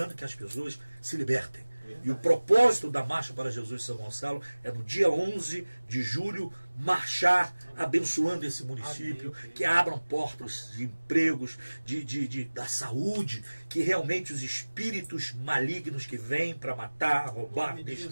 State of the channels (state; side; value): inverted; both; correlation -1.00